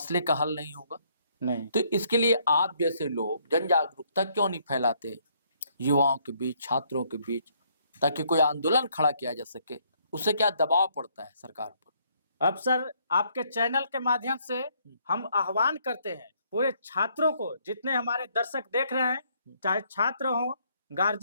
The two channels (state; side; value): inverted; both; correlation -0.68